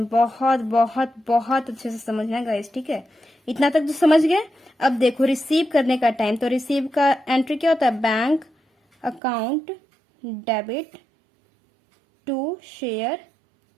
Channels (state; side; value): drops out; left; at 9.2 s